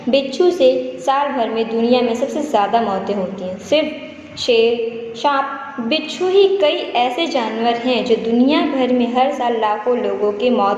बिच्छू से साल भर में दुनिया में सबसे ज़्यादा मौतें होती हैं। सिर्फ शेर, सांप, बिच्छू ही कई ऐसे जानवर हैं जो दुनिया भर में हर साल लाखों लोगों की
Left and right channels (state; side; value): identical; both; correlation 1.00